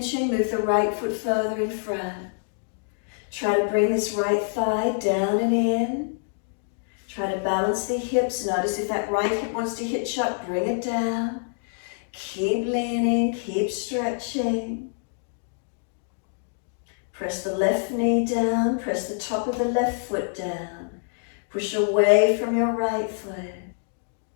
move the right foot further in front. Try to bring this right thigh down and in. Try to balance the hips. Notice if that right hip wants to hitch up, bring it down. Keep leaning, keep stretching. Press the left knee down, press the top of the left foot down. Push away from your right foot.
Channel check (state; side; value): silent; right; digital silence